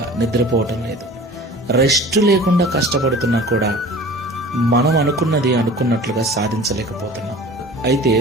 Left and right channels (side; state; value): both; normal; correlation 0.42